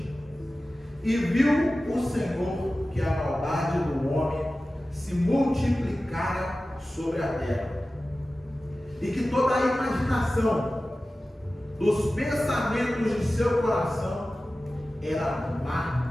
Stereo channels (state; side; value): normal; both; correlation 0.95